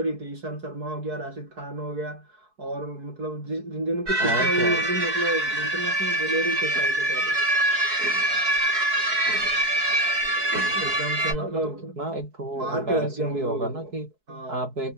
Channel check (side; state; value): left; late; 4.7 ms